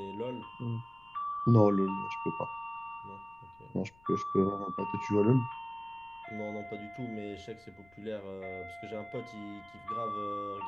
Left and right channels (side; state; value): left; noise; rumble, 29 dB below the sound